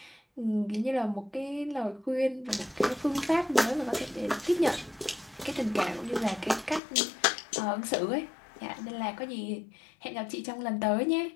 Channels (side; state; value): right; drops out; at 6.8 s